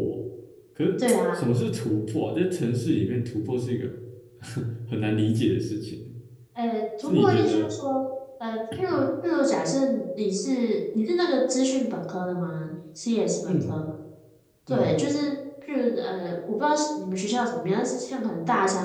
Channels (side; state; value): both; identical; correlation 1.00